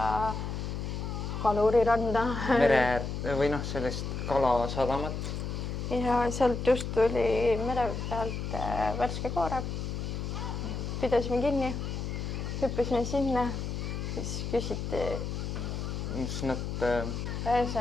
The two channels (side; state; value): left; noise; hum, 4 dB below the sound